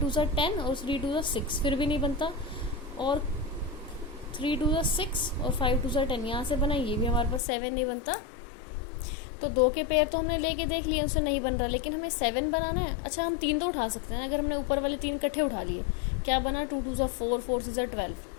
10 और 3 2 6, फिर भी नहीं बनता। और 3 2 6 और 5 2 10 यहाँ से बना, ये भी हमारे पास 7 नहीं बनता। तो 2 के पेयर तो हमने लेके देख लिए, उससे नहीं बन रहा, लेकिन हमें 7 बनाना है। अच्छा हम 3 तो उठा सकते हैं, अगर हमने ऊपर वाले 3 इकट्ठे उठा लिए, क्या बना 2 2 4, 4 6 12,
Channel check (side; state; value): right; drops out; at 7.4 s